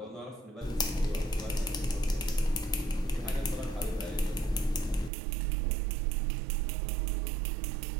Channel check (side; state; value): left; drops out; at 5.1 s